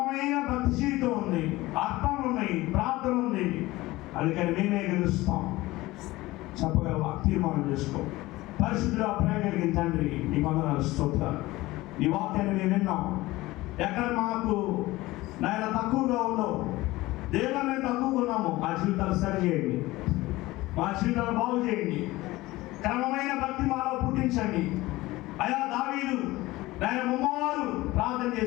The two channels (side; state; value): right; quieter; 19.0 dB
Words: భక్తి జీవితం ఉంది, అర్థాలు ఉన్నాయి, ప్రార్థన ఉంది. అందుకని మేమే గెలుస్తాం. చెప్పగలవా? తీర్మానం చేసుకో. పరిశుద్ధుడా, ప్రేమ కలిగిన తండ్రి, నీ వందనాలు, స్తోత్రాలు. ఈ వాక్యాన్ని మేము విన్నాం. ఎక్కడ మాకు నాయన తక్కువగా ఉండవు, దేవుడు మేము తక్కువగా ఉన్నాము, మా జీవితాలు సరి చేయండి, మా జీవితాలు బాగు చేయండి, క్రమమైన భక్తి మాలో పుట్టించండి. అయా దావీదు నాయన ముమ్మవారు ప్రార్థన